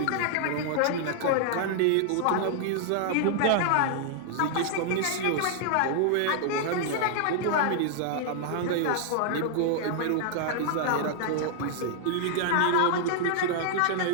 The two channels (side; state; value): both; different; correlation -0.01